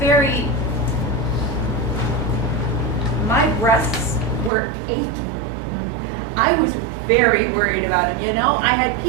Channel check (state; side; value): drops out; left; at 4.5 s